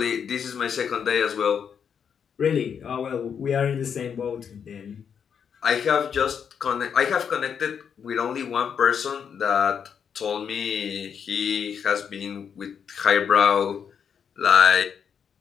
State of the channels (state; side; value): quieter; right; 7.4 dB